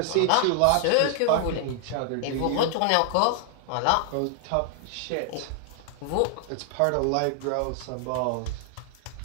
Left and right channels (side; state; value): both; different; correlation 0.00